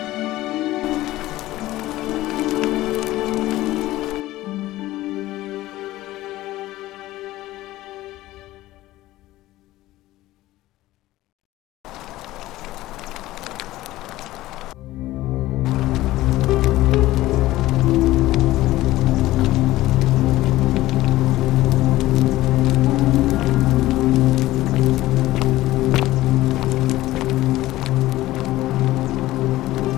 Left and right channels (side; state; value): right; quieter; 16.5 dB